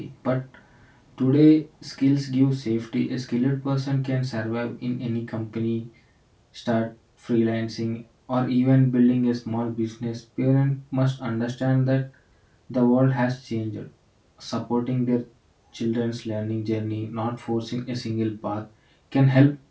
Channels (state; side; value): identical; both; correlation 1.00